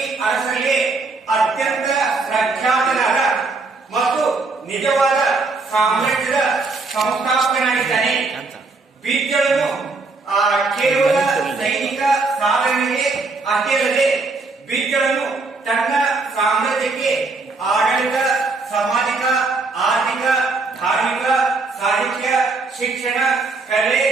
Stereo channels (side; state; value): left; quieter; 3.8 dB